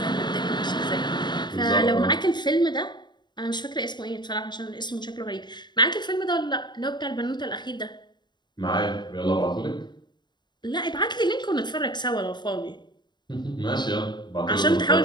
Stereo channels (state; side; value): late; right; 0.21 ms